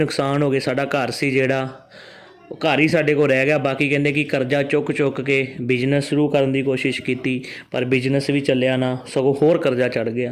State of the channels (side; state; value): both; identical; correlation 1.00